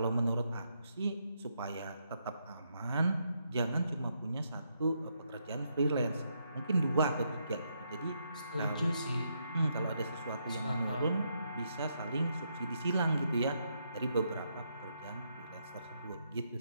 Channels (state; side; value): inverted; both; correlation -0.78